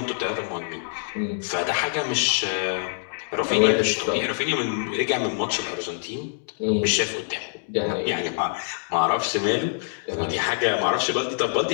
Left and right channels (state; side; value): silent; right; digital silence